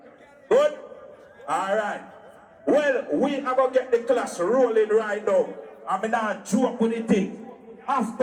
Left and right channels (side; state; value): both; identical; correlation 1.00